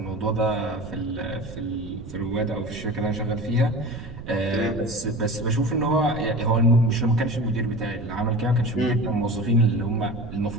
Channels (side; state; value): right; noise; rumble, 13 dB below the sound